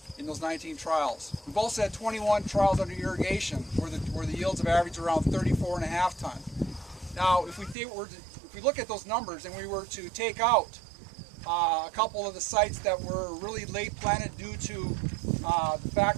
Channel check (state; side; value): drops out; left; at 7.8 s